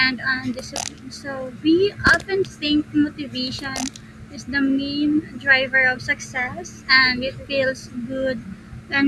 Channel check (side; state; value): both; identical; correlation 1.00